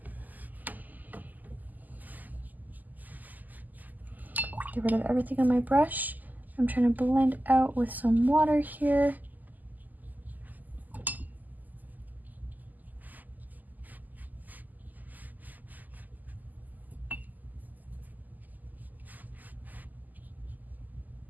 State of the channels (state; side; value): late; left; 0.083 ms